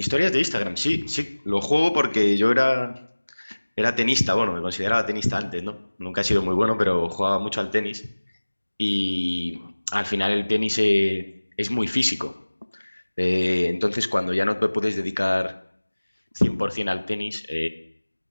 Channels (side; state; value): both; inverted; correlation -1.00